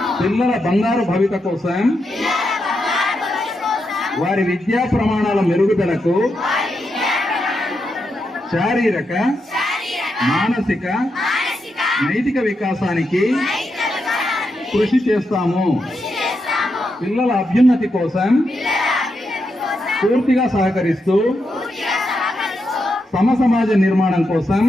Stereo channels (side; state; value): both; normal; correlation 0.84